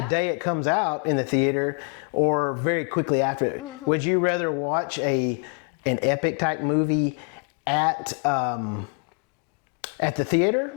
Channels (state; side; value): quieter; right; 38.6 dB